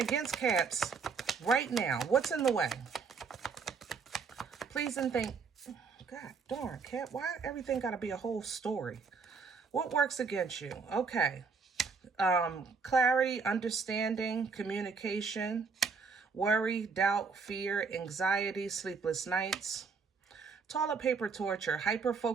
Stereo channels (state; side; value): quieter; left; 5.2 dB